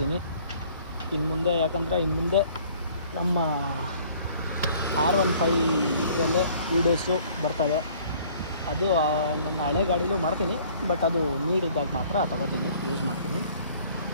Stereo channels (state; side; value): inverted; both; correlation -0.55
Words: ಇನ್ನು ಮುಂದೆ ನಮ್ಮ R15 ಇದರಲ್ಲೇ ವೀಡಿಯೋಸು ಬರ್ತವೆ. ಅದು ನನ್ನ ಹಳೆ ಗಾಡಿಲೂ ಮಾಡ್ತೀನಿ, ಬಟ್ ಅದು ನೀಡಿದ್ದಾಗ ಮಾತ್ರ ತಗೋತೀನಿ, ಯೂಸ್ ಮಾಡ್ತೀನಿ.